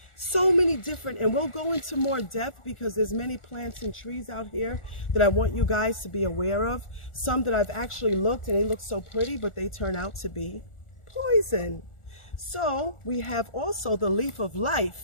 So many different, and we'll go into more depth because there's many plants and trees out here that I want you guys to be aware of. Some that I've actually looked and they look so pretty, but they turn out to be poison. So we have also the leaf of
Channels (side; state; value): right; late; 1.4 ms